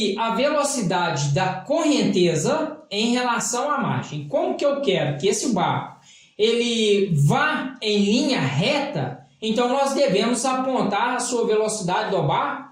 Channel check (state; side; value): identical; both; correlation 1.00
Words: a velocidade da correnteza em relação à margem. Como que eu quero que esse barco ele vá em linha reta, então nós devemos apontar a sua velocidade do